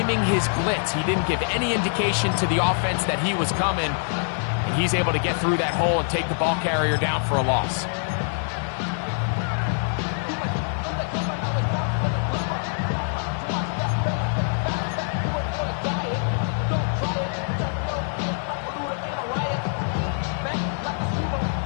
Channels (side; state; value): right; silent; 62 dB below the other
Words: his blitz. He didn't give any indication to the offense that he was coming. And he's able to get through that hole and take the ball carrier down for a loss.